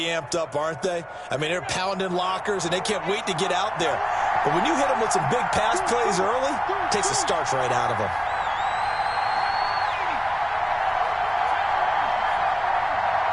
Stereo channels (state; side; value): identical; both; correlation 1.00